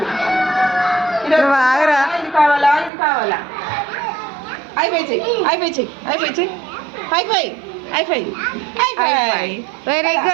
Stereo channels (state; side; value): drops out; left; at 2.9 s